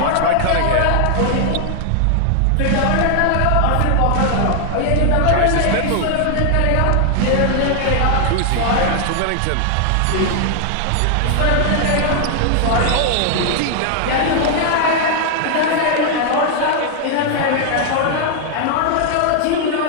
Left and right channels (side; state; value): both; different; correlation 0.00